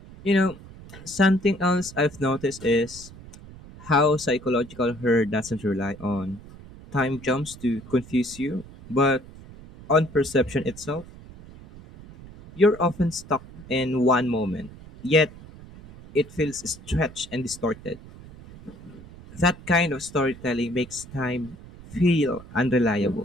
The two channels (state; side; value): noise; right; rumble, 18 dB below the sound